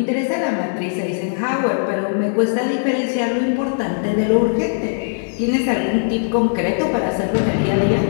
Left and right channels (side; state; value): right; silent; digital silence